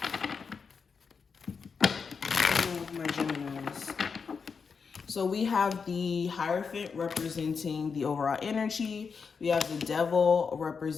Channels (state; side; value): quieter; right; 5.6 dB